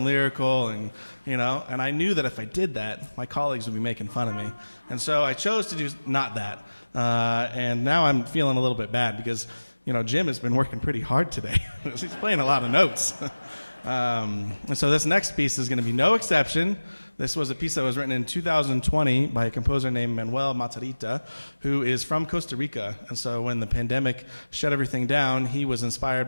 lyrical, and and I knew that if I did that, my colleagues would be making fun of me. And so I chose to do not that. And now I'm feeling a little bit bad because, Jim has been working pretty hard today. He's playing a lot of notes. And so this next piece is going to be no exception. This was a piece that was written in 2020 by a composer named Manuel Matarrita, who is from Costa Rica. And so when the pandemic shut everything down, he was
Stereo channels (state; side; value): inverted; both; correlation -1.00